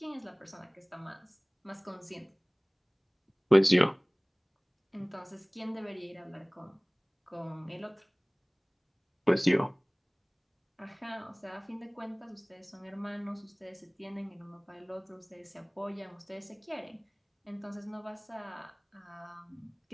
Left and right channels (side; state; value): both; identical; correlation 1.00